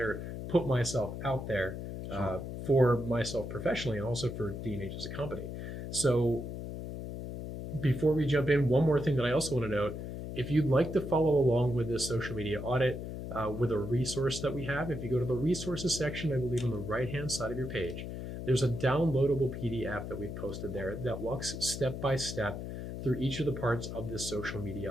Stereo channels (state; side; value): noise; left; hum, 7 dB below the sound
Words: put myself out there for myself professionally and also for D&H as a company. So before we jump in, one more thing that I also want to note, if you'd like to follow along with this social media audit with a resource that we have, if you go to the resources section, I believe on the right-hand side of your page, there's a downloadable PDF that we've posted there that walks step by step through each of the parts of this social